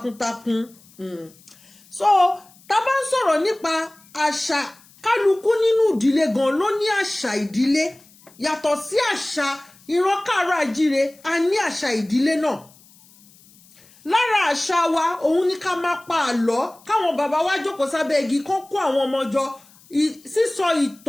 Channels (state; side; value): noise; left; hiss, 27 dB below the sound